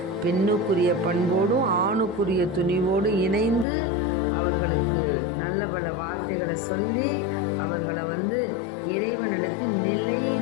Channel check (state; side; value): drops out; right; at 3.7 s